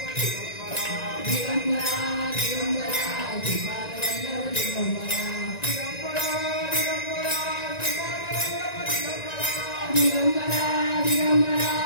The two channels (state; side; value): late; right; 1.9 ms